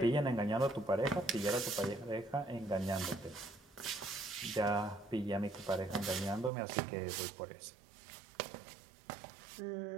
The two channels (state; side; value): drops out; left; at 6.5 s